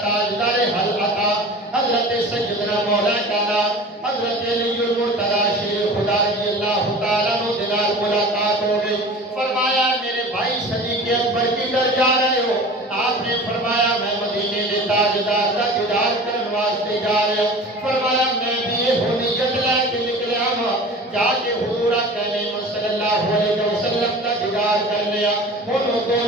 تاجدار حلقہ حضرت سیدنا مولا کانا حضرت علی المرتضی شیر خدا رضی اللہ تعالیٰ عنہ دلال ملاقات ہو گئی۔ فرمایا میرے بھائی صدیق اکبر کی در جا رہے ہو؟ آپ نے فرمایا میں مدینے دے تاجدار کا دیدار کرنے واسطے جا رہے ہوں۔ فرمایا میں بھی یہ نیت لے کے نکلیا ہوں جا کے حضور کہنے صلی اللہ علیہ وسلم کا دیدار کرنے ہوں۔ انہوں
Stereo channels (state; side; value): normal; both; correlation 0.38